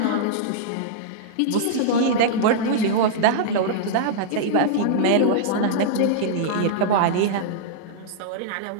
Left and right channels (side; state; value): both; different; correlation -0.02